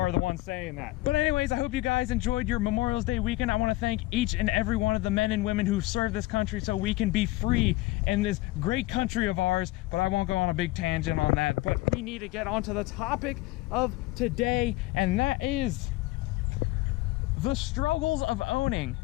the one saying that. But anyways, I hope you guys enjoyed your Memorial Day weekend. I want to thank each and every one of the men and women who've served this country so we can be free in this great country of ours. But I won't go on a big tangent on that. But we need to get on to the topic of today, and that is the struggles of owning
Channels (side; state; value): right; quieter; 19.1 dB